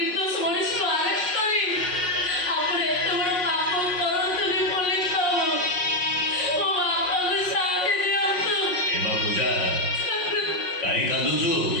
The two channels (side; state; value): right; late; 5.5 ms